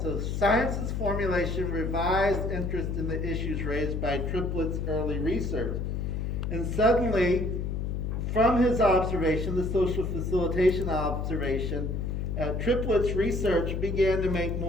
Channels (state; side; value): noise; left; hum, 2 dB below the sound